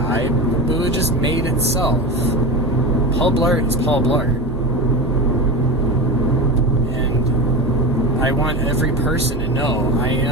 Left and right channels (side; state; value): both; normal; correlation 0.24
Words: but it just made itself. Paul Blart is Paul Blart. And I want every person to know I